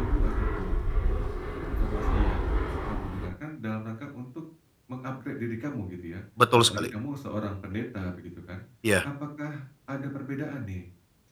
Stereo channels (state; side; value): identical; both; correlation 1.00